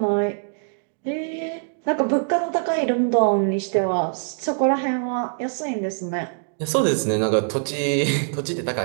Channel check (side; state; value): left; silent; digital silence